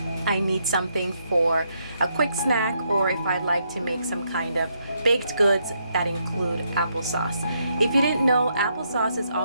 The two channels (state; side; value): inverted; both; correlation -0.76